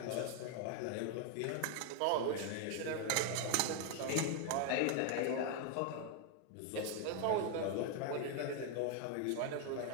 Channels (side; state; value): both; different; correlation 0.01